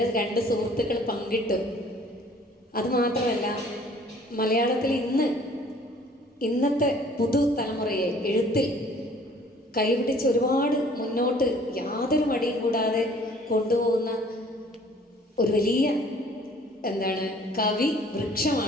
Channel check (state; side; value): normal; both; correlation 0.54